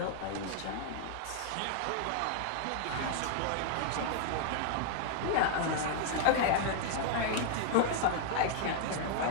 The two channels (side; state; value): both; different; correlation 0.00